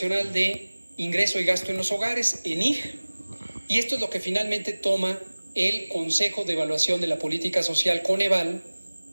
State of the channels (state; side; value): inverted; both; correlation -1.00